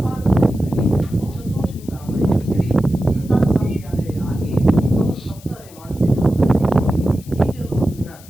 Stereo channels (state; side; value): noise; left; hiss, 23 dB below the sound